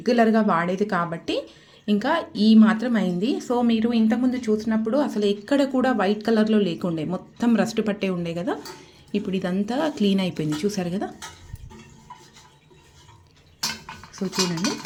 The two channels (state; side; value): identical; both; correlation 1.00